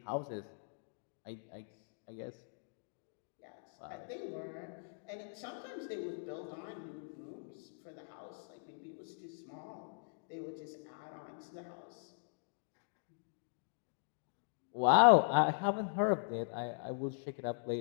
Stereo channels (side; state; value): right; silent; digital silence